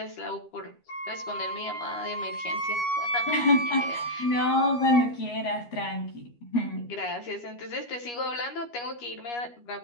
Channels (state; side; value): late; right; 13 ms